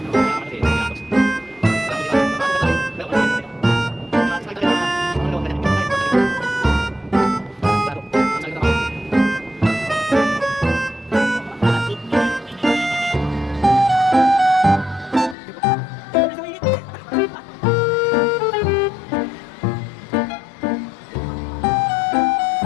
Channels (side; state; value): right; drops out; at 15.4 s